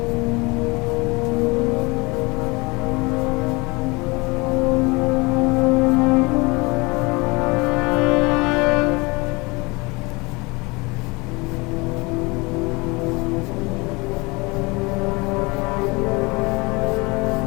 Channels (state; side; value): quieter; right; 25.9 dB